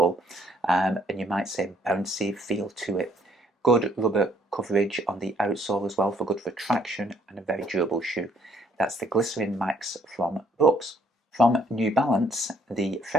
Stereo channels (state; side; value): normal; both; correlation 0.65